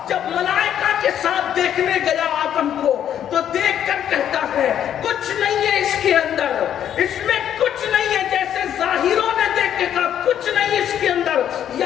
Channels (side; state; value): right; quieter; 10.0 dB